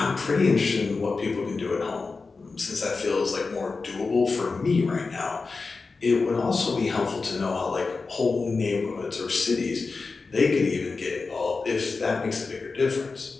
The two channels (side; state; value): right; quieter; 4.2 dB